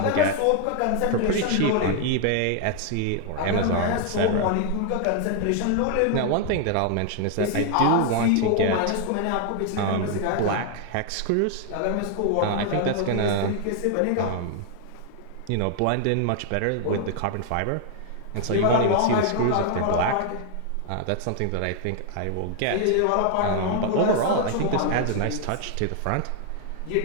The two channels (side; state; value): both; different; correlation 0.00